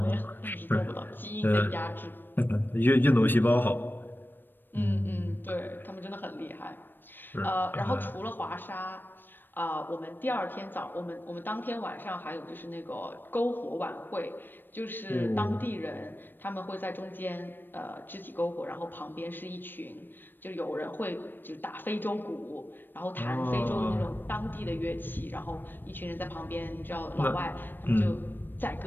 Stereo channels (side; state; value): right; late; 0.094 ms